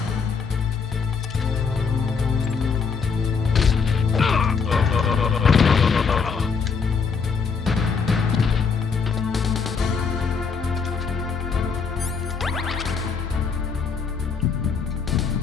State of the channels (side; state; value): right; quieter; 5.6 dB